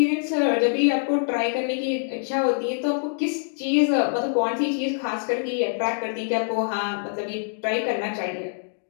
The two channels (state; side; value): silent; right; digital silence